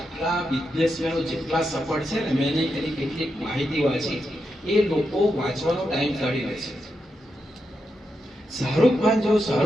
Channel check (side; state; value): both; normal; correlation 0.85